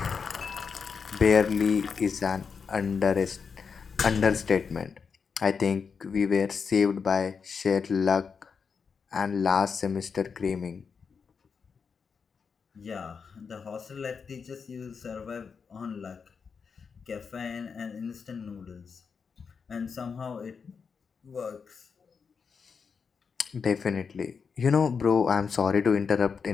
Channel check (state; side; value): quieter; right; 5.8 dB